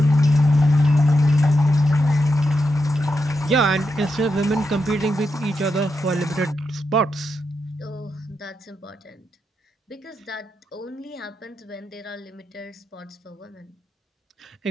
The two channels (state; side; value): normal; both; correlation 0.85